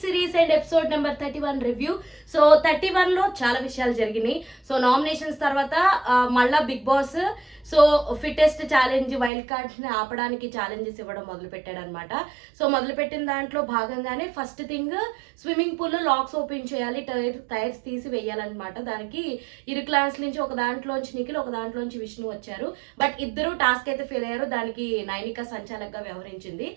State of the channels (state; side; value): drops out; left; at 9.3 s